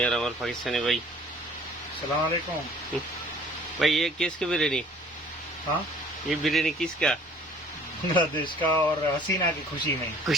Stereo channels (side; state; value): both; normal; correlation 0.52